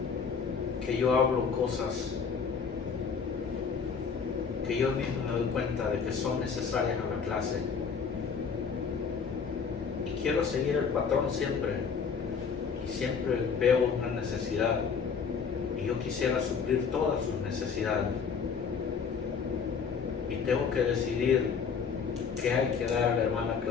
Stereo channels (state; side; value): quieter; right; 6.0 dB